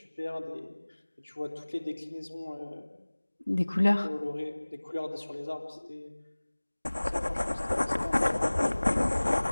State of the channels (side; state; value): both; inverted; correlation -1.00